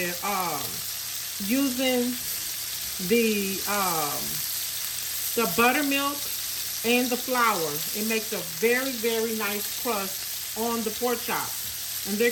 using the buttermilk and the flour. It makes a very, very nice crust on the pork chops, and they're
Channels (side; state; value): both; identical; correlation 1.00